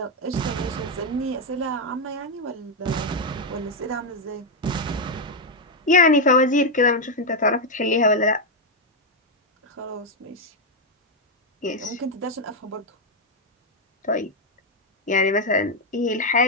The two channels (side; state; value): both; normal; correlation 0.01